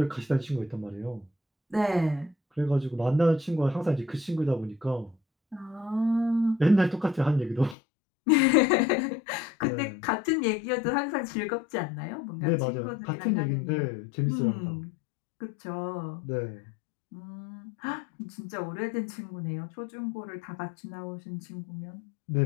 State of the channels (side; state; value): right; drops out; at 7.8 s